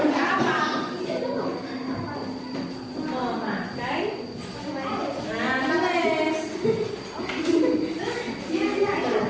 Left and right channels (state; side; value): identical; both; correlation 1.00